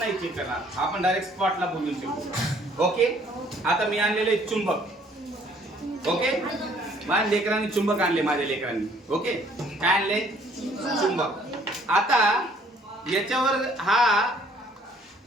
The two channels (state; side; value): normal; both; correlation 0.61